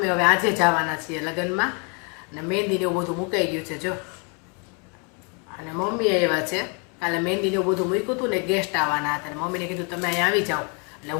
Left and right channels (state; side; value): quieter; right; 35.9 dB